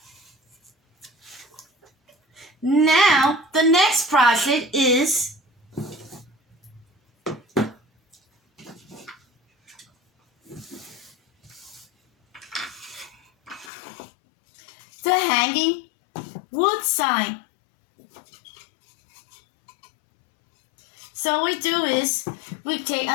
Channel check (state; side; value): drops out; right; at 13.7 s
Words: Now, the next project is the hanging wood sign. So what we do is we take